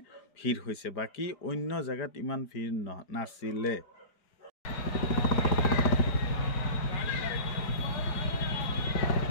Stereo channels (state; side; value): late; right; 4.9 ms